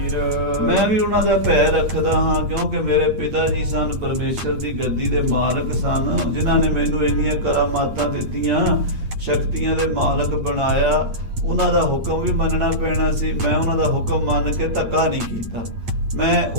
ਮੈਂ ਵੀ ਉਹਨਾਂ ਦਾ ਭੈ ਰੱਖਦਾ ਹਾਂ, ਕਿਉਂਕਿ ਮੇਰੇ ਪਿਤਾ ਜੀ ਸਨ, ਪਰਮੇਸ਼ਰ ਦੀ ਗੱਦੀ ਦੇ ਮਾਲਕ ਸਨ, ਜਿਨ੍ਹਾਂ ਨੇ ਮੈਨੂੰ ਇੰਨੀਆਂ ਕਰਾਮਾਤਾਂ ਦਿੱਤੀਆਂ, ਸ਼ਕਤੀਆਂ ਦੇ ਮਾਲਕ ਬਣਾਇਆ। ਉਹਨਾਂ ਦਾ ਹੁਕਮ ਵੀ ਮੰਨਣਾ ਪੈਣਾ ਸੀ। ਮੈਂ ਉਹਨਾਂ ਦਾ ਹੁਕਮ ਮੰਨ ਕੇ ਧੱਕਾ ਨਹੀਂ ਕੀਤਾ, ਮੈਂ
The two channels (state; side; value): late; left; 8.8 ms